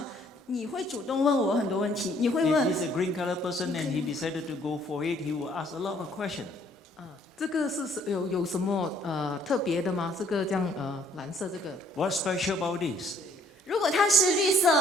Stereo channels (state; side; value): normal; both; correlation 0.62